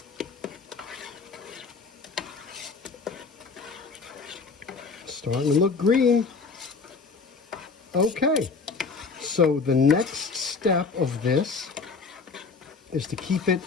Starting to look green. Okay, so the next step of this is to keep it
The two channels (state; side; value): quieter; right; 4.7 dB